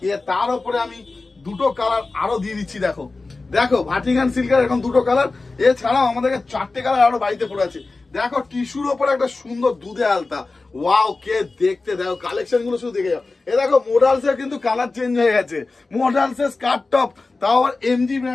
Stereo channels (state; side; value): quieter; right; 3.6 dB